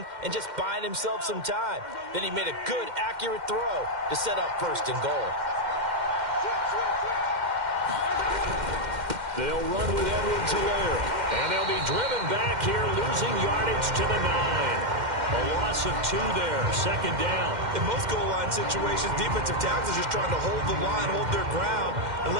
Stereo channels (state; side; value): late; left; 2.1 ms